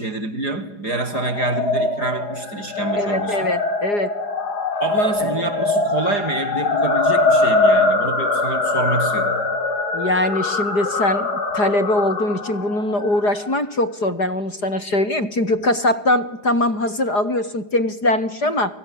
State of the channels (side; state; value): right; late; 4.9 ms